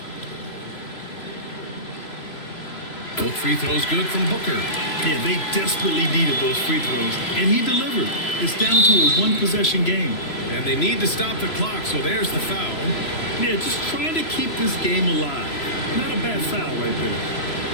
Both free throws good from Booker. Yeah, they desperately needed those free throws, and he delivered. It's down to a 1-possession game. And they need to stop the clock, so there's the foul. Yeah, just trying to keep this game alive. Not a bad foul right there.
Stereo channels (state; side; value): late; right; 3.0 ms